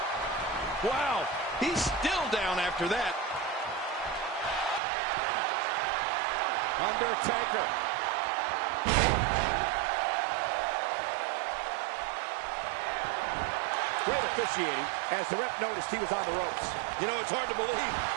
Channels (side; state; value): left; drops out; at 4.8 s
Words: Wow, he's still down after that. Undertaker. Great officiating as the ref noticed he was on the ropes. You know, it's hard to believe,